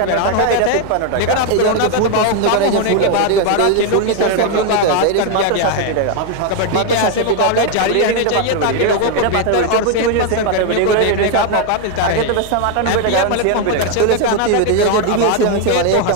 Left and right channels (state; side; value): different; both; correlation 0.01